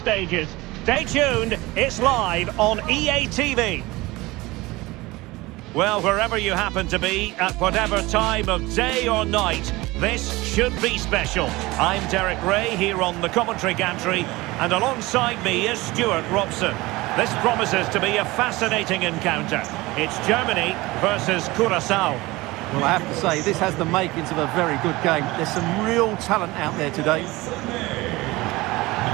Stay tuned, it's live on EA TV. Well, wherever you happen to be, at whatever time of day or night, this should be special. I'm Derek Ray here on the commentary gantry, and alongside me is Stuart Robson. This promises to be a fascinating encounter. It's Germany versus Curacao. Well, I have to say, this has the makings of a very good game. There's some real talent out there today.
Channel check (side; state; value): left; quieter; 20.8 dB